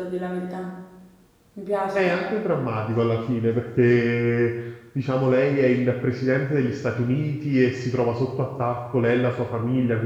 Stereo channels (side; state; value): both; identical; correlation 1.00